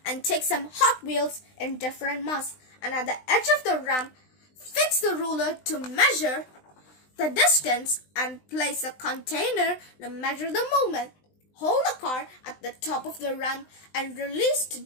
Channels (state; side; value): late; right; 20 ms